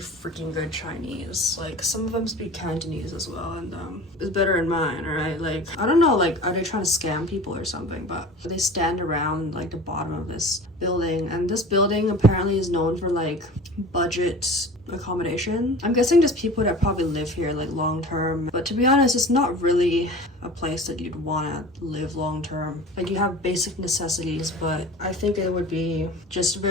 good Chinese. Like, some of them speak Cantonese as well, and it's better than mine, right? Like, I don't know, like, are they trying to scam people or something? But they stand around like the bottom of this building, and this building apparently is known for like budget accommodation. I'm guessing just people that probably live here like long term, but to be honest, it's not really a place that you'd want to live long term. Like, you have basic necessities, but I think it would be just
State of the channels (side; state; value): both; normal; correlation 0.39